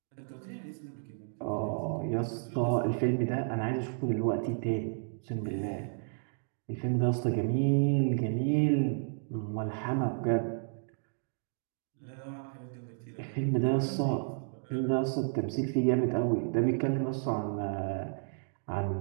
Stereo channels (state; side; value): silent; left; digital silence